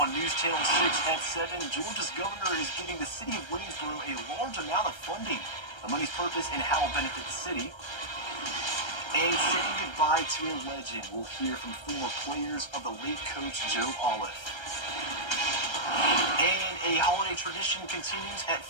News Channel 6 at 7, Georgia's governor is giving the city of Waynesboro a large amount of funding. The money's purpose and how it will benefit the city. And saying goodbye to a legend, we'll hear from former players of the late coach Joe Olive. And a holiday tradition continues at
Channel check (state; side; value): late; right; 1.3 ms